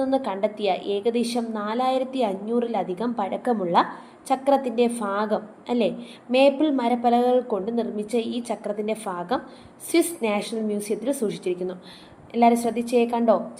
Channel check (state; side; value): identical; both; correlation 1.00